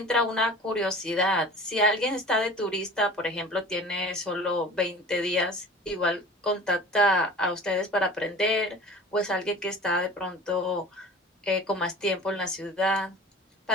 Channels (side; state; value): both; normal; correlation 0.41